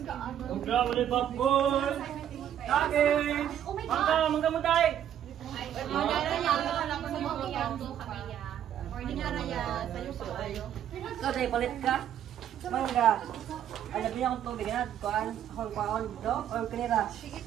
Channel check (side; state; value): left; quieter; 10.3 dB